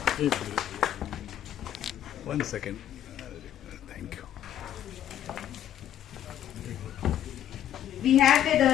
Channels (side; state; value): right; quieter; 10.9 dB